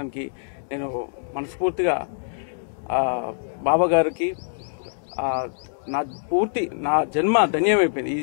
నేను మనస్ఫూర్తిగా బాబా గారికి నా జన్మ ధన్యమైపోయింది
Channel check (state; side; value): silent; right; digital silence